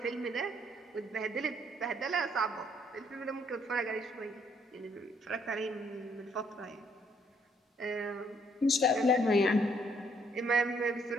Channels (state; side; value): normal; both; correlation 0.68